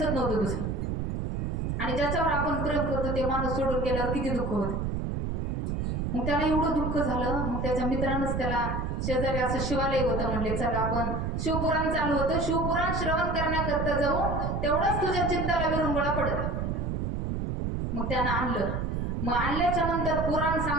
नव्हतं दुसरं. आणि ज्याच्यावर आपण प्रेम करतो ते माणूस सोडून गेल्यावर किती दुःख होतं. मग त्याला एवढं दुःख झालं. मग त्याच्या मित्रांनंच त्याला शेजारी असं शिवालय होतं, म्हणले चला आपण शिवपुराण चालू होतं, शिवपुराण श्रवण करण्याकरता जाऊ, तेवढंच तुझ्या चित्ताला विरंगुळा पडत. मग त्यानं आणलं. मग आणल्याच्या नंतर पुराण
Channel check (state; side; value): noise; right; rumble, 1 dB below the sound